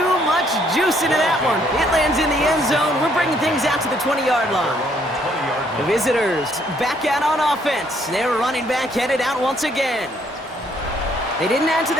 much juice into that one. It lands in the end zone. We're bringing things out to the 20-yard line. The visitors back out on offense. Their running back headed out once again. They didn't add to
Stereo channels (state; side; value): normal; both; correlation 0.67